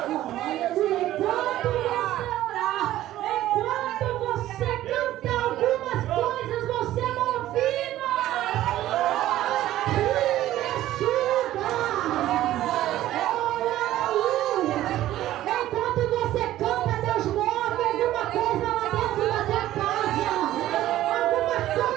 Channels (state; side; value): quieter; left; 14.1 dB